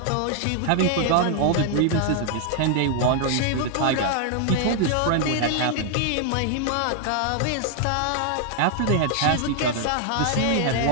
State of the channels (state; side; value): different; both; correlation 0.00